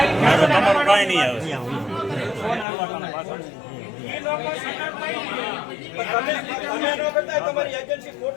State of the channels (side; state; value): right; drops out; at 2.7 s